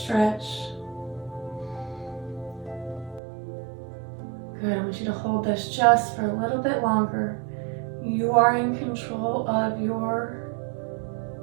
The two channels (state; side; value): drops out; left; at 3.2 s